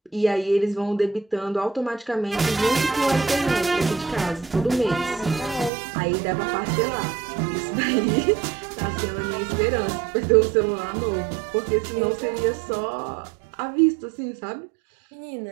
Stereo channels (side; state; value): left; drops out; at 5.7 s